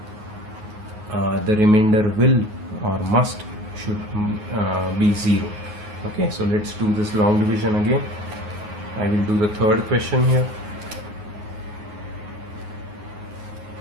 the remainder will or should be 0. Okay, so let's do this long division again. I will do the third question here.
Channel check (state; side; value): late; left; 9.5 ms